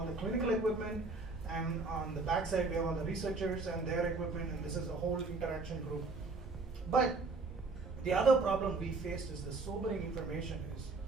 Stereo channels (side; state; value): left; quieter; 3.7 dB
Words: the clinical equipment, and on the back side we have all the researchers and their equipment, and this is a whole interaction group. But the other problem we faced is the sobering information is,